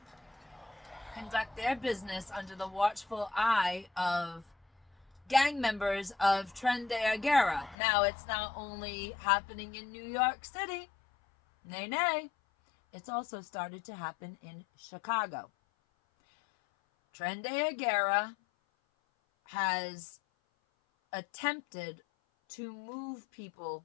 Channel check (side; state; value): right; drops out; at 7.8 s